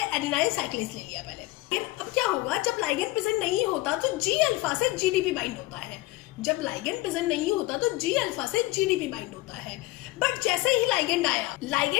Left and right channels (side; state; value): right; quieter; 19.5 dB